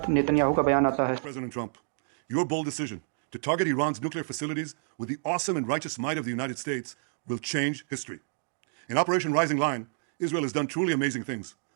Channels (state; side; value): silent; left; digital silence